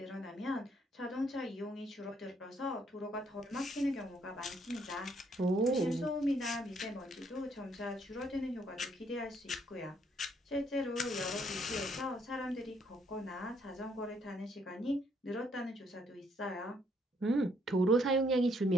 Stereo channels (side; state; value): both; normal; correlation 0.69